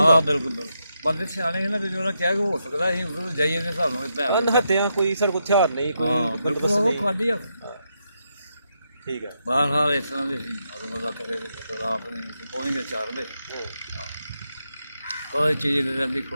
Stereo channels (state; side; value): inverted; both; correlation -0.83